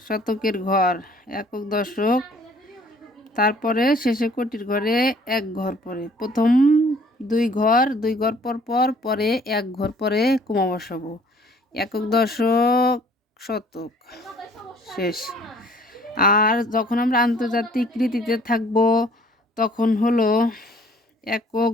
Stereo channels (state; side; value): normal; both; correlation 0.56